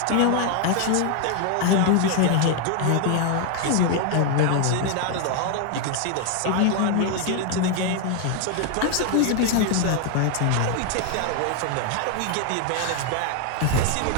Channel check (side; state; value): both; different; correlation 0.00